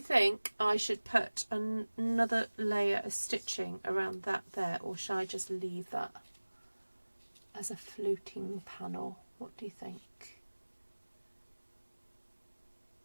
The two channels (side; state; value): both; inverted; correlation -1.00